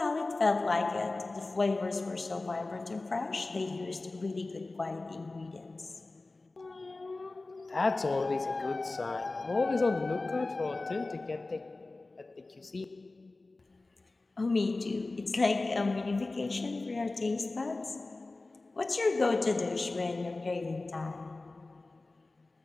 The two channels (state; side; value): quieter; right; 3.2 dB